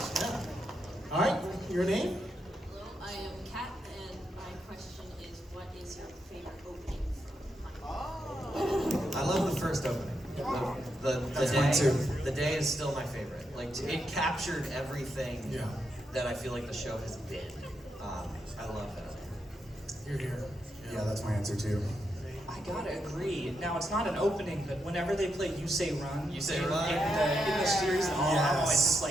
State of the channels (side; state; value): both; normal; correlation 0.82